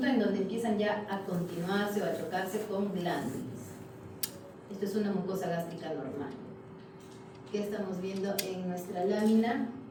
en donde empiezan ya a continuarse o a chocarse con glándulas. Esto es una mucosa gástrica normal. ¿Qué estamos viendo en nuestra lámina?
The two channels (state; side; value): identical; both; correlation 1.00